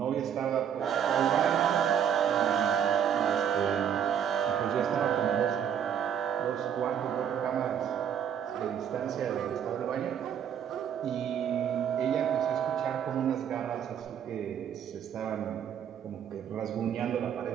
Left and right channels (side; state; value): left; quieter; 8.7 dB